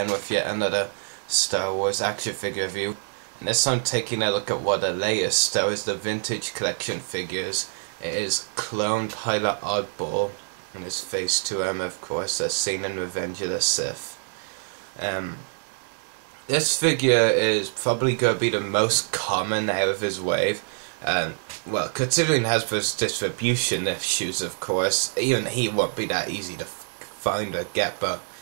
with yet another Star Wars action figure review. And this time taking a look at one of the latest Star Wars the Vintage Collection figures. It is Clone Pilot Oddball, and his Phase 2 armor of course, as seen in Revenge of the Sith. This figure is probably going to be the most common out of his wave. Well, considering Hasbro's distribution issues, of course, even he won't be that easy to find or get, but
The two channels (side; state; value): left; silent; 61 dB below the other